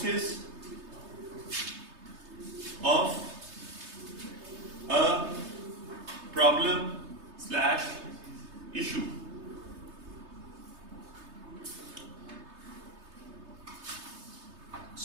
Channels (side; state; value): left; late; 3.3 ms